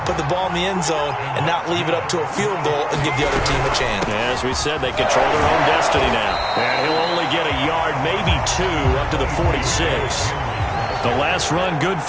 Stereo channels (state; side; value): identical; both; correlation 1.00